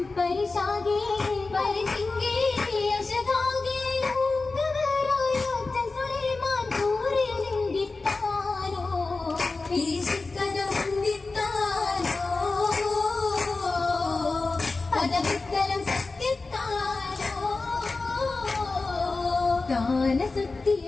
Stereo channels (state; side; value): quieter; right; 3.7 dB